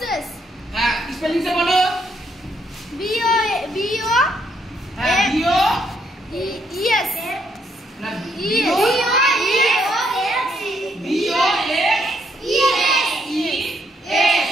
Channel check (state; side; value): normal; both; correlation 0.73